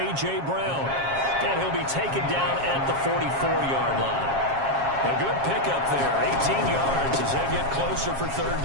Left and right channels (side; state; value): left; late; 7.4 ms